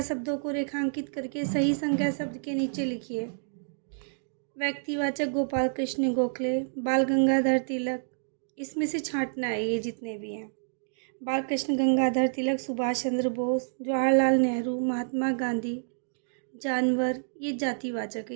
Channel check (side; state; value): left; silent; digital silence